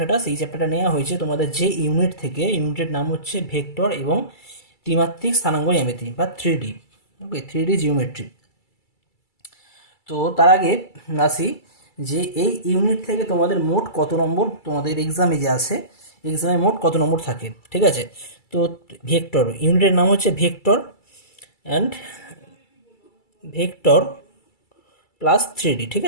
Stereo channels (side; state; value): right; late; 2.3 ms